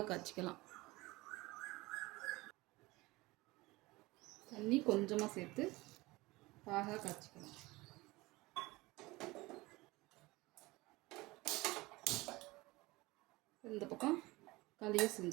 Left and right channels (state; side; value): quieter; left; 21.4 dB